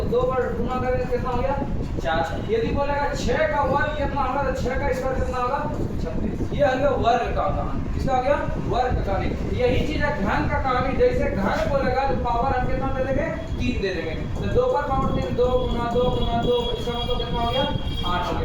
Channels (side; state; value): both; identical; correlation 1.00